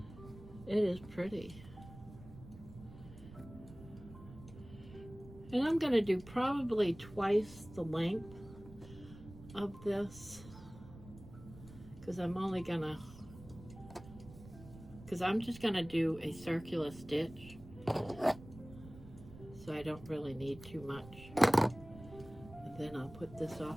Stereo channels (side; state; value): right; noise; rumble, 17 dB below the sound